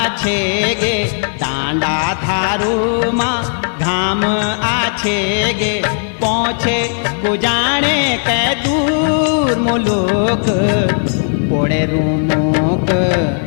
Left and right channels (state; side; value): silent; right; 59 dB below the other